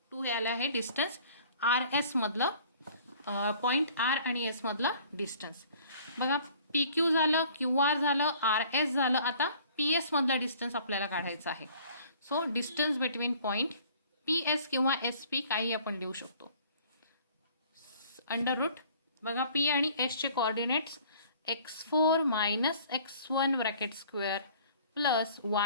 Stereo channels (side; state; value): both; inverted; correlation -0.53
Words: 2 हे आलं आहे डिस्टन्स आर एस मधलं पॉईंट आर आणि एस मधलं डिस्टन्स. बघा पी क्यू झालं क्यू आर झालं आर एस झालं. आता पी एस मधलं डिस्टन्स आपल्याला काढायचं आहे. So distance between point P S किंवा एस पी काही आपण लिहू शकतो. अंडर रूट बघा पी आणि एसचे coordinates x4 minus x1 bracket square plus